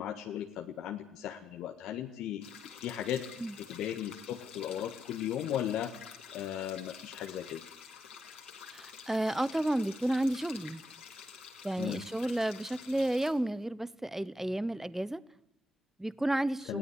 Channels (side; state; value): both; normal; correlation 0.82